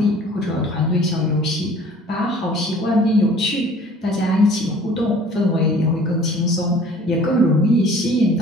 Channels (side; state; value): both; normal; correlation 0.50